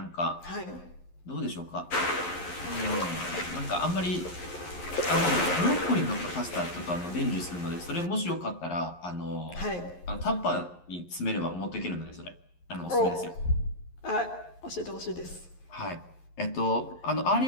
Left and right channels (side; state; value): right; late; 11 ms